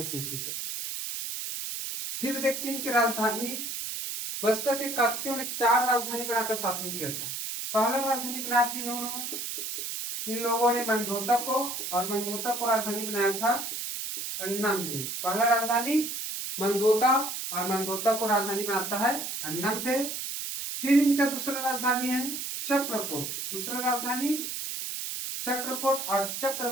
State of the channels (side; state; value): right; noise; hiss, 5 dB below the sound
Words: ईस्वी तक। फिर देखते हैं कि राजधानी। बस्तर के काकतियों ने 4 राजधानी बनाकर शासन किया था। पहला राजधानी बनाया थी इन लोगों ने मंदोता को, और मंदोता को राजधानी बनाया था अन्नमदेव। पहला राजधानी मंदोता, और मंदोता को राजधानी बनाता है अन्नमदेव। फिर इनका दूसरा राजधानी है चक्रकोट। दूसरा राजधानी चक्रकोट, और